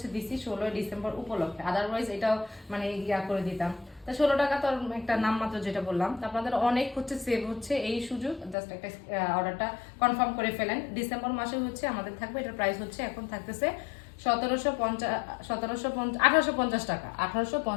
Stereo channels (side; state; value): right; drops out; at 8.6 s